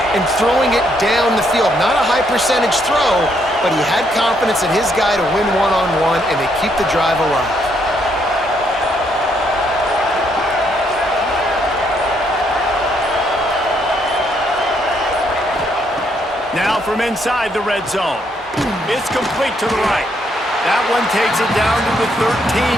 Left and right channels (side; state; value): both; normal; correlation 0.73